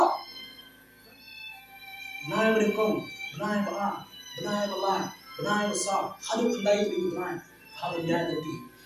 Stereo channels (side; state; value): both; identical; correlation 1.00